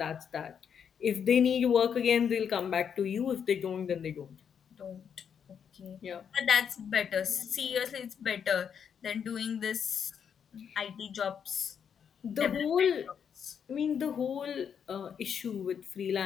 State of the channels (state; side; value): quieter; right; 7.6 dB